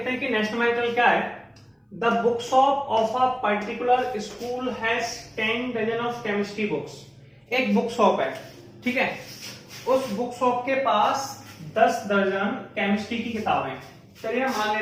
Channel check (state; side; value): identical; both; correlation 1.00